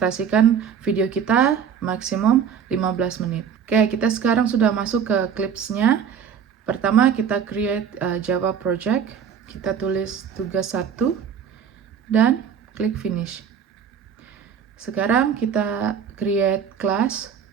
video kita maksimum 15 menit. Oke, kita sekarang sudah masuk ke clipsnya. Pertama kita create Java project. Kita tulis tugas 1 dan klik finish. Sekarang kita create class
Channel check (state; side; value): quieter; left; 7.5 dB